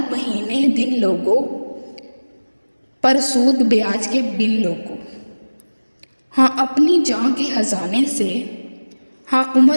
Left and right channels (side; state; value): both; inverted; correlation -1.00